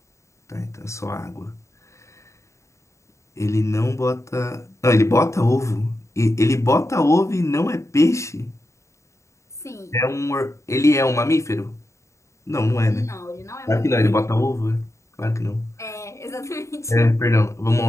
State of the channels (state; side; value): late; right; 0.14 ms